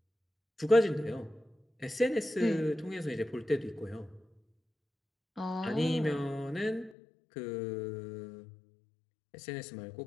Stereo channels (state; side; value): drops out; right; at 7.0 s